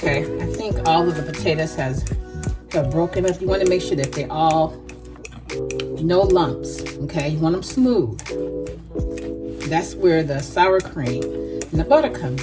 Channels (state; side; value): identical; both; correlation 1.00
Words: I think all of the potatoes have broken up. You want to make sure that they all, no lumps. Okay, you want them smooth. That's where the sour cream and the butter